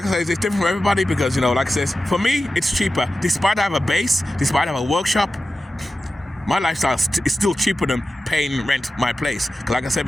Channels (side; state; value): both; normal; correlation 0.93